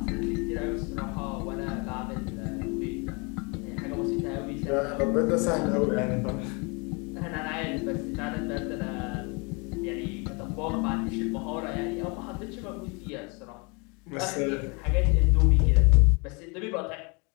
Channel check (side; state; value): right; quieter; 31.2 dB